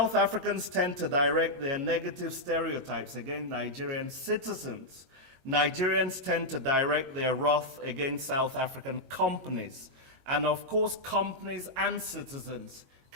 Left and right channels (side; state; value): left; late; 22 ms